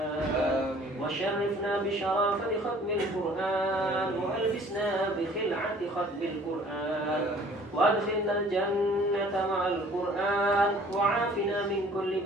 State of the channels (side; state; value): both; normal; correlation 0.53